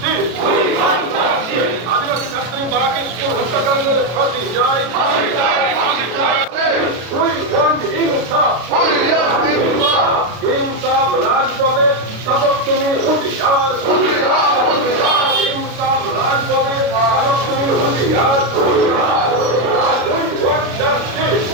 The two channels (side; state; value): left; late; 33 ms